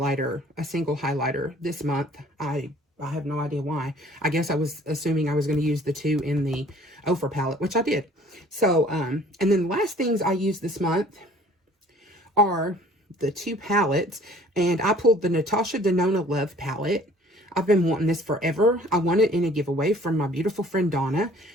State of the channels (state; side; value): normal; both; correlation 0.53